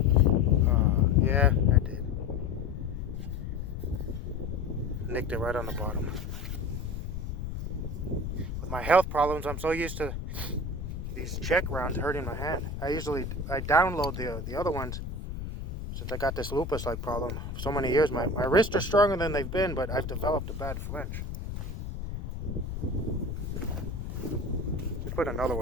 Yeah, I did. Nicked it right on the bottom. With my health problems, I'm so used to these check rounds hurting my hand. I download the other ones since I got this lupus-like problem for so many years. My wrists are stronger than they've been, but I've developed a bad flinch. Let's put another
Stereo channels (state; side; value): noise; left; rumble, 6 dB below the sound